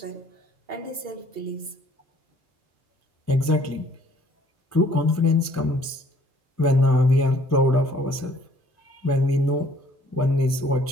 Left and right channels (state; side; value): normal; both; correlation 0.59